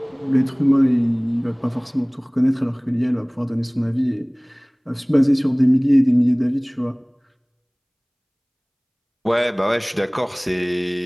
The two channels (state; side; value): identical; both; correlation 1.00